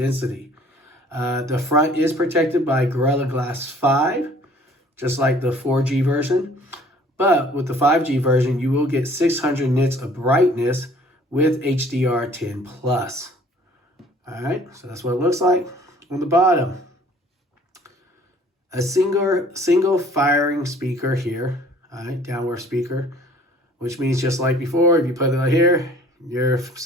The front is protected by Gorilla Glass 5, just like the 4G version. But with the 5G version, you will get 600 nits of brightness with HDR10+. All right, so that's what it looks like. On the bottom, a single firing speaker here, all right, downward speaker, which means just like before, if you put it right here, your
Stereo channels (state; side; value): normal; both; correlation 0.54